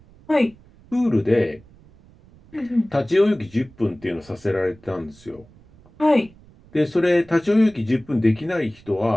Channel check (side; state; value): right; noise; rumble, 26 dB below the sound